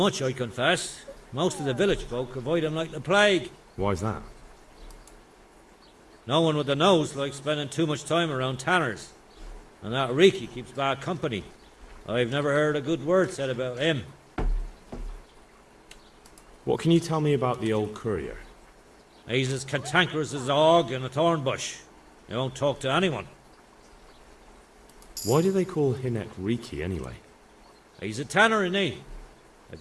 I confess. Most of the village folk avoid him like the plague. Why's that? No one with a nose likes spending too much time around tanners. And that Riki keeps bad company. I've never heard a good word said about him. What can you tell me about the old courier? He's as cantankerous as a hog in a thorn bush. He won't talk to anyone. Why do they call Hinnock Riki anyway? He's a tanner, isn't he? If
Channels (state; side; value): identical; both; correlation 1.00